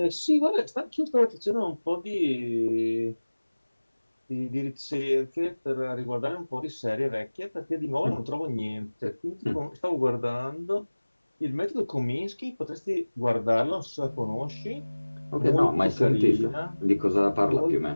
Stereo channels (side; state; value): both; inverted; correlation -1.00